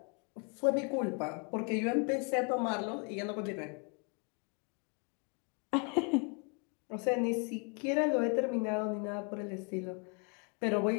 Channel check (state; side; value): quieter; right; 35.5 dB